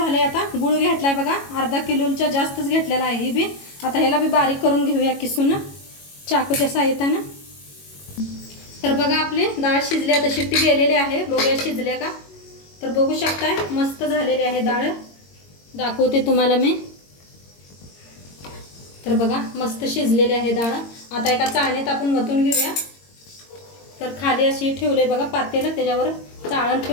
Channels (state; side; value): late; right; 22 ms